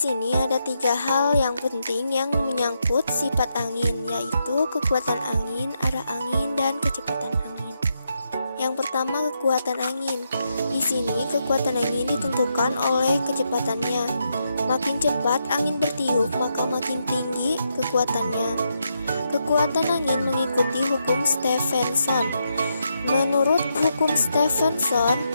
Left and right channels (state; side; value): inverted; both; correlation -0.82